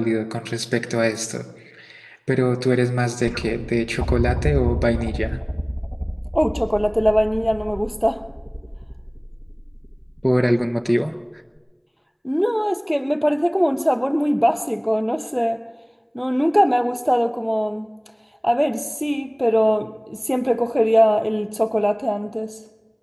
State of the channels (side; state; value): both; identical; correlation 1.00